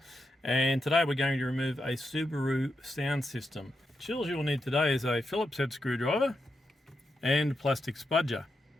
and today we're going to remove a Subaru sound system. Tools you'll need today is a Phillips head screwdriver and a plastic spudger.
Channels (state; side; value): normal; both; correlation 0.85